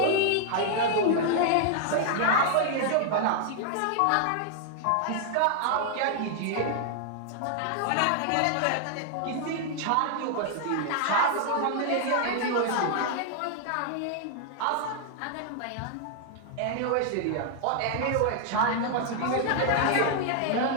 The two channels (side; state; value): both; different; correlation 0.00